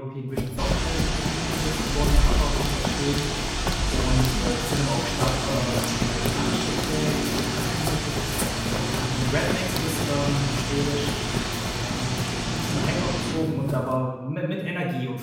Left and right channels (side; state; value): both; identical; correlation 1.00